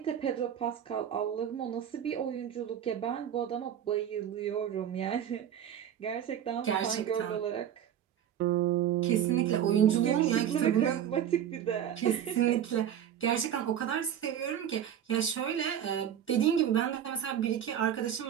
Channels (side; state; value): left; quieter; 9.8 dB